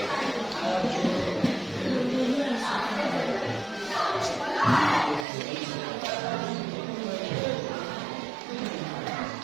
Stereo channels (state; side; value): drops out; left; at 5.2 s